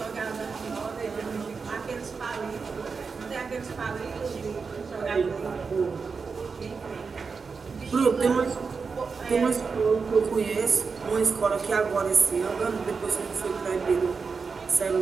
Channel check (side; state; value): left; quieter; 5.1 dB